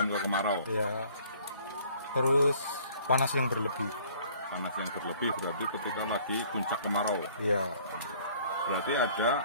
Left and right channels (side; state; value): both; inverted; correlation -0.56